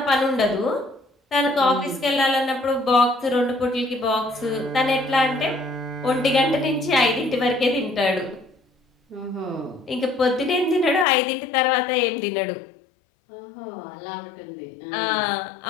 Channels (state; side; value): drops out; right; at 11.1 s